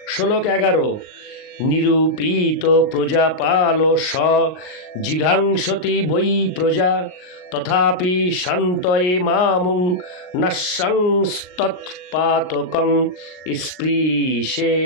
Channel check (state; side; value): late; right; 38 ms